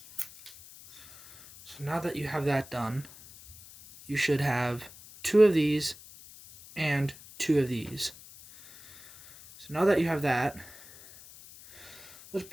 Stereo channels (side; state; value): left; noise; hiss, 19 dB below the sound